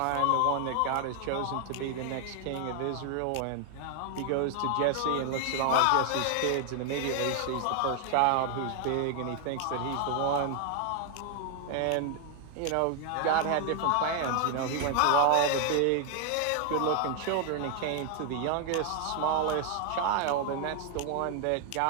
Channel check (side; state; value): both; different; correlation 0.00